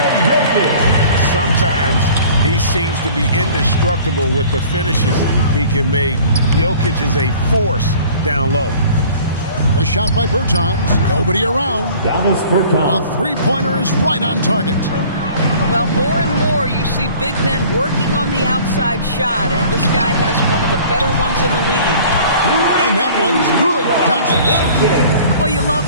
Sometimes he seems to be indestructible with the finishes he can make. Jokic is a force down low. The shot by Bertans. Nobody around. Davis Bertans. A three-pointer is right on target. Well, more and more you see big men working on the outside shot, and this guy has one of the better ones in the league. And that one's good. Doncic. Well, you love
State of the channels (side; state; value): both; inverted; correlation -0.48